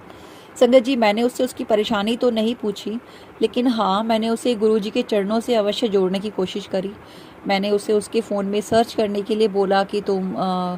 संगत जी, मैंने उससे उसकी परेशानी तो नहीं पूछी, लेकिन हाँ, मैंने उसे गुरुजी के चरणों से अवश्य जोड़ने की कोशिश करी। मैंने उसे उसके फ़ोन में सर्च करने के लिए बोला कि तुम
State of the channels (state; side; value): identical; both; correlation 1.00